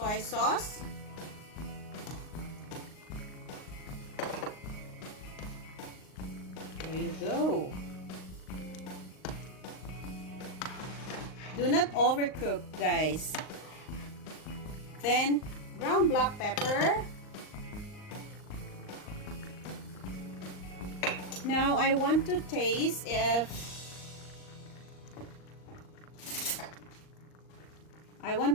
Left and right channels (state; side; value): late; right; 38 ms